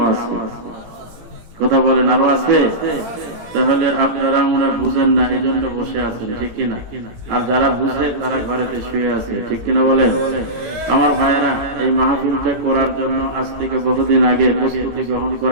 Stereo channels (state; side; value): late; left; 18 ms